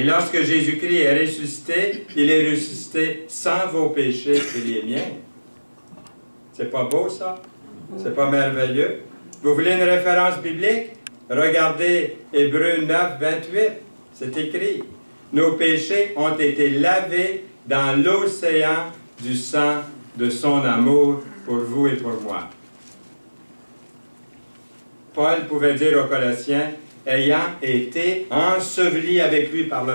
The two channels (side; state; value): both; inverted; correlation -1.00